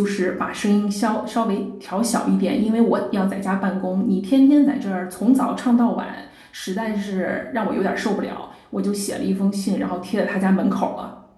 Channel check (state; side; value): identical; both; correlation 1.00